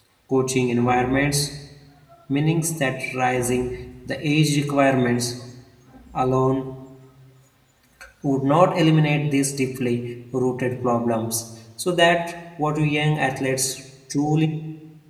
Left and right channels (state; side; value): identical; both; correlation 1.00